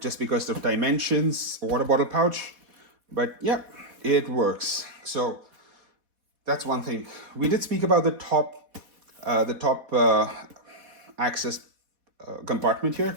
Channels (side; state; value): left; late; 4.1 ms